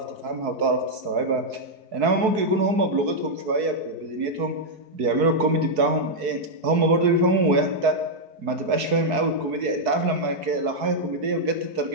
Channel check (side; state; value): left; late; 4.6 ms